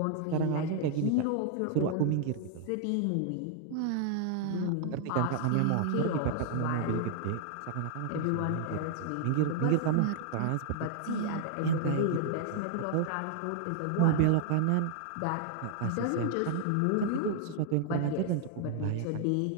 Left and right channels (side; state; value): both; different; correlation 0.00